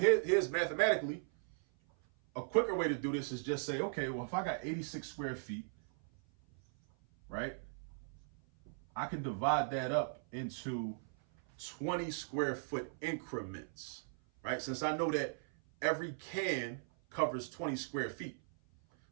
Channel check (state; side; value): silent; left; 52 dB below the other